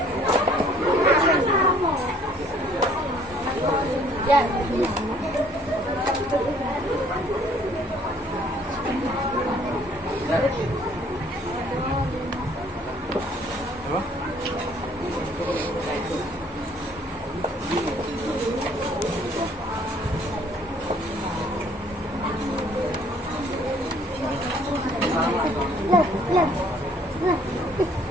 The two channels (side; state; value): both; normal; correlation 0.59